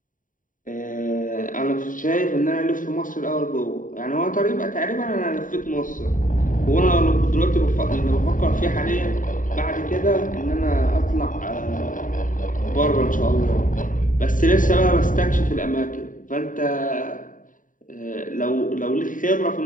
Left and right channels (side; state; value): right; late; 0.39 ms